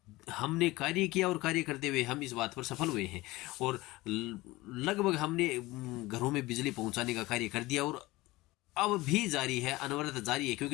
हमने कार्य किया और कार्य करते हुए हम इस बात पर सफल हुए हैं और लगभग हमने घरों में बिजली पहुंचाने का कार्य कर दिया और अब भी जारी है, अनवरत जारी है।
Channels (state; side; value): quieter; right; 19.9 dB